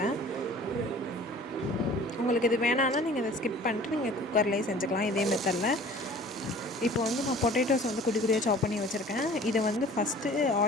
உங்களுக்கு இது வேணான்னா நீங்கள் இதை ஸ்கிப் பண்ணிட்டு நீங்கள் குக்கர்லேயே செஞ்சுக்கலாம் இதே மெத்தடில். இப்போ வந்து நான் பொட்டேட்டோஸ் வந்து குட்டி குட்டியாக சாப் பண்ணி வச்சுருக்கேன். இதை வந்து ஃபஸ்ட்டு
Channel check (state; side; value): normal; both; correlation 0.47